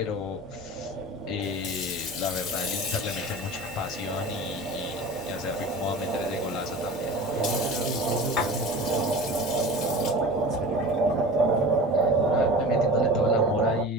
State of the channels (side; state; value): both; normal; correlation 0.35